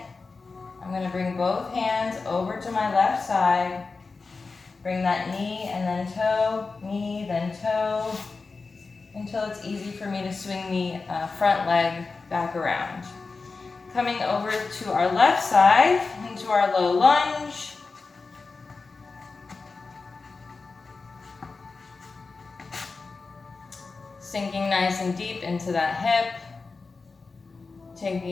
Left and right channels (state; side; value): quieter; right; 4.2 dB